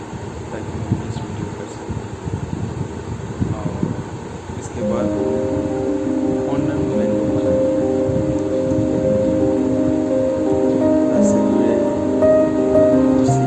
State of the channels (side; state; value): both; identical; correlation 1.00